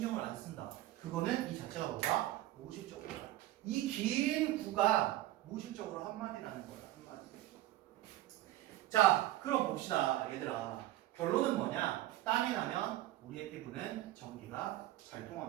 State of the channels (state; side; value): quieter; left; 15.4 dB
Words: 안 쓴다. 그거는 이 자체가 뭐다? 무의식적으로다. 이 긴 구가 무의식적으로 한마디라는 거야. 한마디. 자, 그럼 봅시다 얘들아. 결론은 뭐냐? 땀이 나면 우리의 피부는 전기가 잘